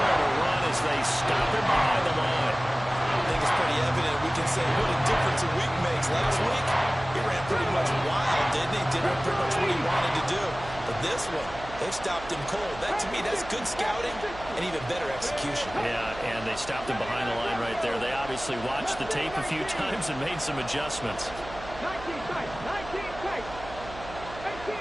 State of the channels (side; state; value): right; noise; hum, 14 dB below the sound